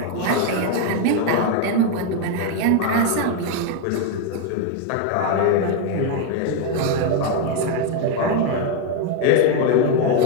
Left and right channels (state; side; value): different; both; correlation 0.01